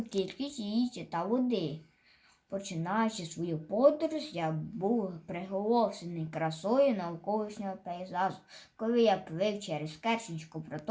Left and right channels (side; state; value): both; identical; correlation 1.00